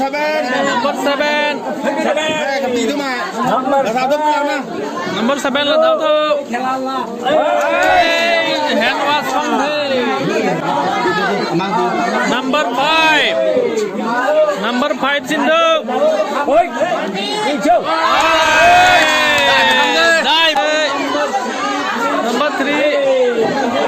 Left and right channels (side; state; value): both; identical; correlation 1.00